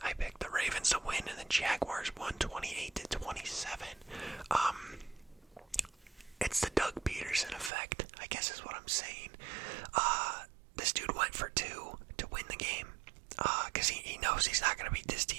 I picked the Ravens to win, and the Jaguars won 28-27. It's the Doug Peterson effect, I guess is what I'm saying. This dude went for 2 to win the game, because he knows he's not going to beat this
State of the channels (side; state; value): left; drops out; at 7.7 s